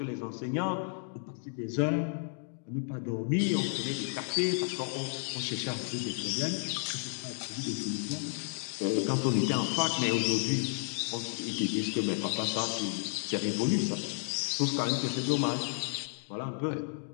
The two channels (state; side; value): silent; right; 56 dB below the other